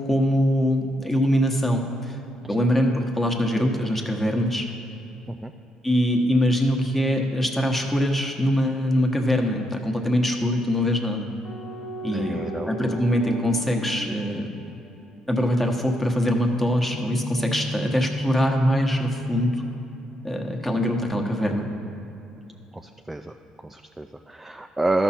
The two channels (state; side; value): normal; both; correlation 0.79